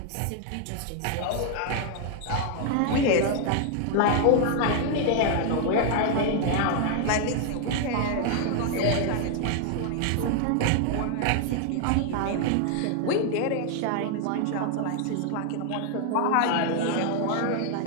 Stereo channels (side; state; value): both; different; correlation 0.00